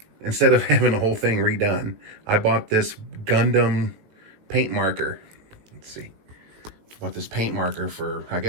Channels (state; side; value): late; left; 19 ms